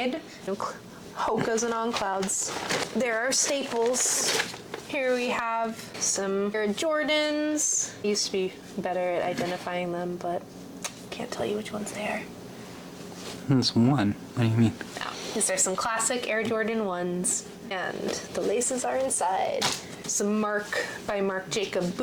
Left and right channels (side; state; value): both; identical; correlation 1.00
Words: Hokas and On Clouds. There are staples. Here we have some Air Jordans. I used to be better at identifying them, but can't tell you which ones they are. There's one. What do you mean? Now, is there some classic Air Jordan 1s? And the laces are inside. Some Marc by Marc Jacob